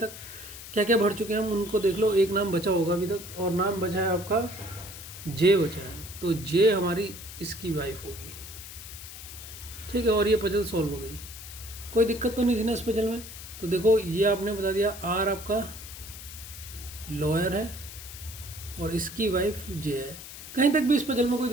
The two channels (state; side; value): noise; left; hiss, 13 dB below the sound